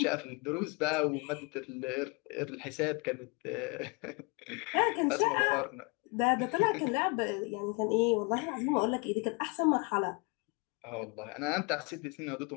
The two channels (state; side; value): quieter; right; 31.0 dB